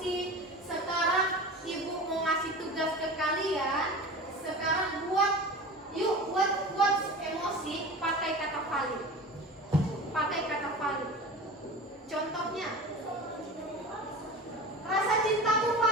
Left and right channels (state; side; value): normal; both; correlation 0.33